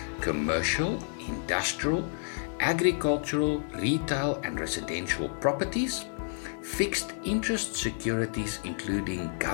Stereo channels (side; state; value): right; silent; digital silence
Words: commercial, industrial, agricultural, retail and residential properties, fixed interest securities including